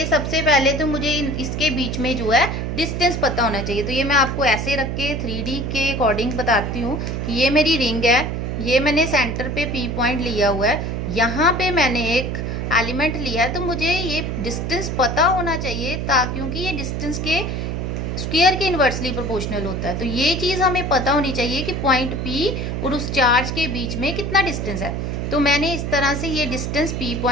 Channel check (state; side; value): noise; right; hum, 3 dB below the sound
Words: सबसे पहले तो मुझे इसके बीच में जो है डिस्टेंस पता होना चाहिए। तो ये मैं आपको ऐसे रख के 3D के अकॉर्डिंग बताती हूँ कि ये मेरी रिंग है, ये मैंने सेंटर पे P पॉइंट लिया हुआ है, यहाँ पे मैंने एक एलिमेंट लिया है। तो मुझे ये डिस्टेंस पता होना चाहिए क्योंकि ये डिस्टेंस के स्क्वायर के इन्वर्सली प्रोपोर्शनल होता है। तो ये चीज़ हमें पता होनी चाहिए कि पॉइंट P और उस चार्ज के बीच में कितना डिस्टेंस है। तो मैंने इस तरह से ये डिस्टेंस P